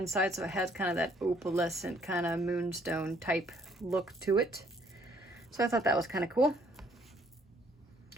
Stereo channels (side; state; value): both; normal; correlation 0.64